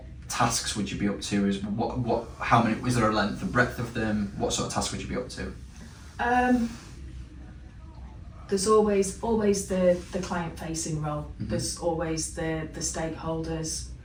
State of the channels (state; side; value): identical; both; correlation 1.00